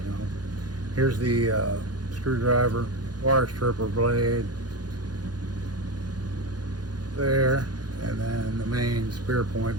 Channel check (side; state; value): left; late; 0.69 ms